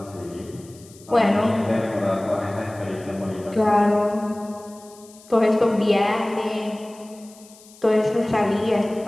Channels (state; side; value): noise; left; hiss, 24 dB below the sound